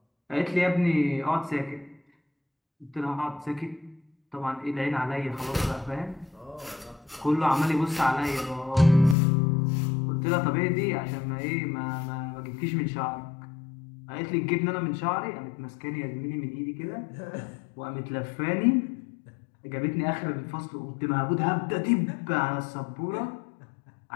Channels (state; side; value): drops out; right; at 9.2 s